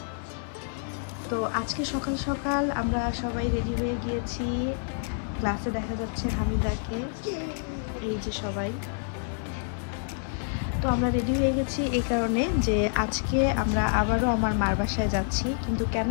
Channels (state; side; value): silent; right; digital silence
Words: তো আজকে সকাল সকাল আমরা সবাই রেডি হয়ে গিয়েছি। ক্লাসে দেখা যাচ্ছে হামিদাকে, এই যে সবাই। তো আমরা রেডি হয়ে গেছি এই কারণে যে আজকে আমরা আবারও আমার মার বাসায় যাচ্ছি। কিন্তু কেন